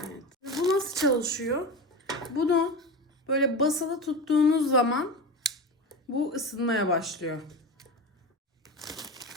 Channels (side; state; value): both; normal; correlation 0.25